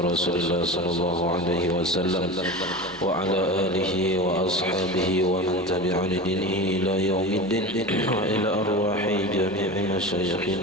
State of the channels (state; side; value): normal; both; correlation 0.28